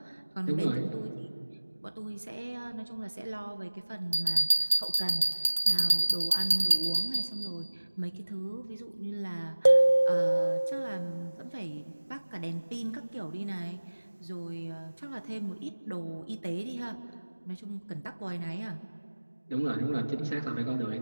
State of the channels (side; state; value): both; inverted; correlation -1.00